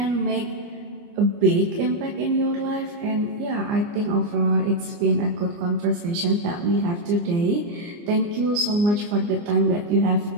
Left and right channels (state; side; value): late; left; 29 ms